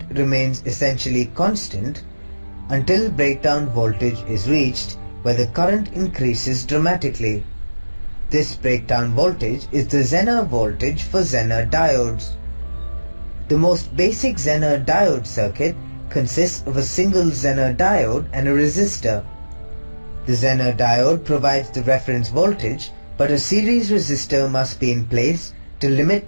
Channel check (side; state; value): both; inverted; correlation -1.00